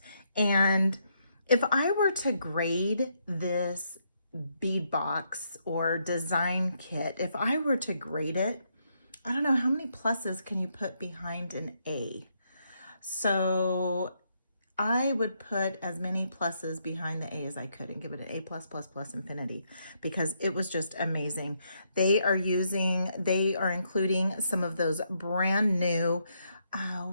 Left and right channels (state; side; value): inverted; both; correlation -0.77